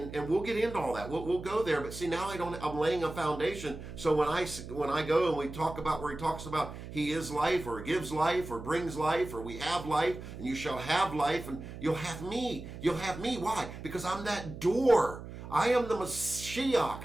we'll get into all that. We'll go there. But see, now I'm laying a foundation. So when I go and we talk about where he talks about he is life, or gives life, or brings life, or we have life, and you shall have life, and you'll have me. You'll have me. Why? Because I'm that door. I am the Mashiach.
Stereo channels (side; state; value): right; noise; hum, 11 dB below the sound